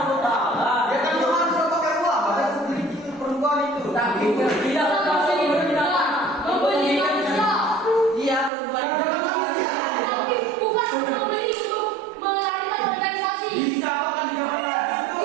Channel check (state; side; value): drops out; left; at 8.5 s